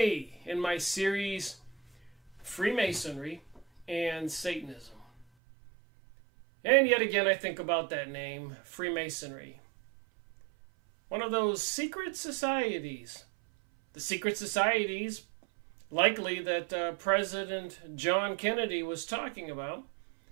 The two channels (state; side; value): drops out; left; at 5.2 s